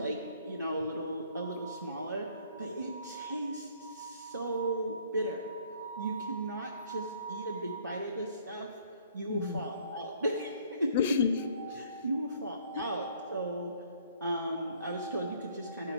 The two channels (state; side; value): inverted; both; correlation -0.60